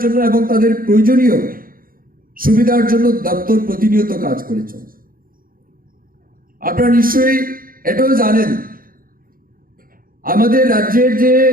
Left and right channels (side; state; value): left; late; 0.41 ms